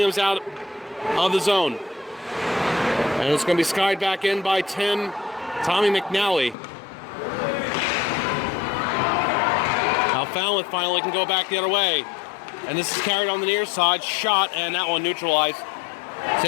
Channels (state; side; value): drops out; right; at 6.6 s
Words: out of the zone. And it's going to be skied back in by Tommy McNally. Now Falmouth finally can go back the other way. And this is carried on the near side. Shot, and that one neutralized.